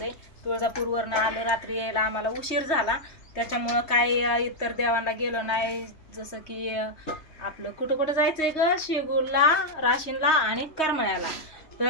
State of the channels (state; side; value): late; right; 3.2 ms